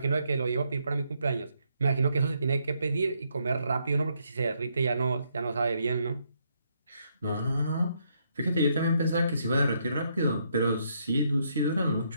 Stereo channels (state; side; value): inverted; both; correlation -0.75